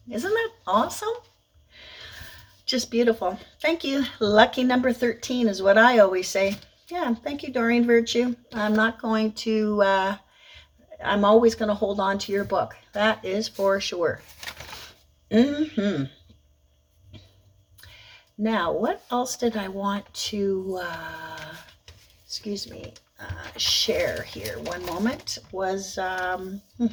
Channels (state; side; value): identical; both; correlation 1.00